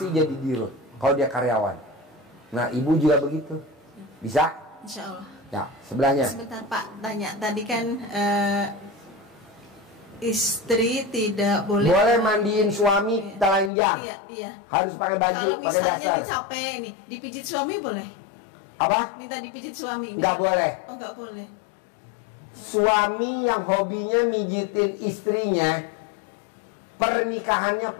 jadi dirut kalau dia karyawan. Nah, ibu juga begitu. Bisa? Insya Allah. Ya, sebelahnya. Sebentar Pak, tanya tadi kan istri tidak boleh mandiin suami telanjang. Iya. Harus pakai baju, kalau pakai misalnya dasar. dia capek ini, dipijit suami boleh? Apa? Minta dipijit suami? Nggak boleh. Oh, nggak boleh. Suami yang hobinya mijitin istrinya, pernikahannya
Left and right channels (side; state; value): right; drops out; at 13.7 s